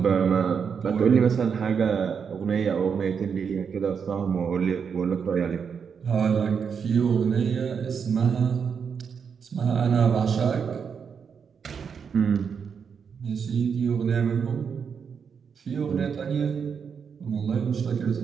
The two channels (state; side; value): quieter; left; 6.6 dB